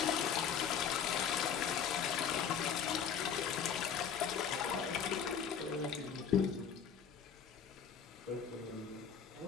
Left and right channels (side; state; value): right; quieter; 7.6 dB